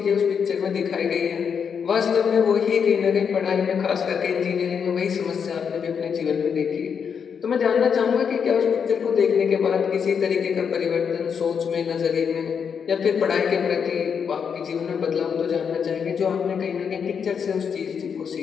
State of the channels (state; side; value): quieter; right; 6.8 dB